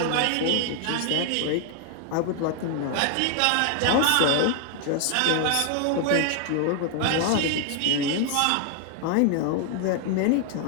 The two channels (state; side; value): different; both; correlation 0.00